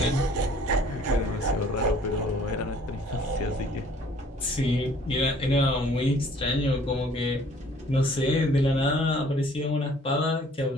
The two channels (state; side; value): normal; both; correlation 0.55